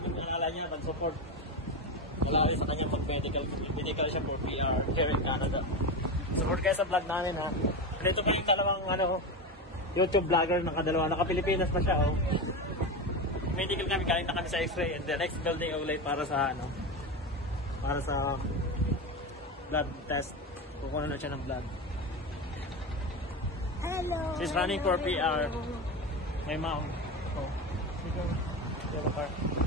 nalala niya mag-support. Wala rin sa kanya mag-medical. Medical siya for PR here in Canada. Support kayo sa vlog namin Dito kami dalawang YouTube vlogger nakadalawa. Naka-Pilipinas pa siya Medical kami, galing na kami sa X-ray. And the next building ulit para sa blood test. Kukuha na siya ng blood. Hello. She's running for PR. My mom.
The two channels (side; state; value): both; normal; correlation 0.19